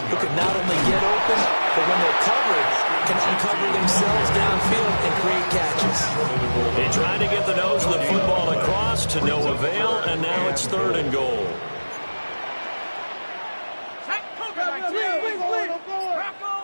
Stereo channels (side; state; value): both; inverted; correlation -1.00